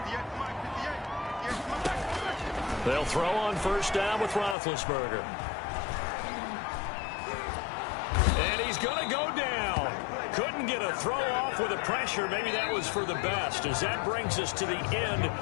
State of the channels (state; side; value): drops out; right; at 4.5 s